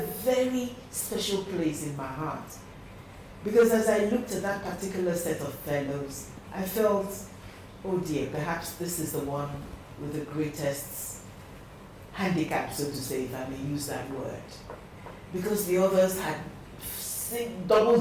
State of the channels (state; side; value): identical; both; correlation 1.00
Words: very special place in my heart. Because as I looked at that particular set of fellows, I felt, oh dear, perhaps this is the one with the greatest handicap, so to say, if I may use that word. Because the others had double